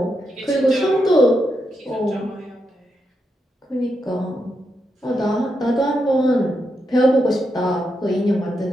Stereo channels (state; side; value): normal; both; correlation 0.84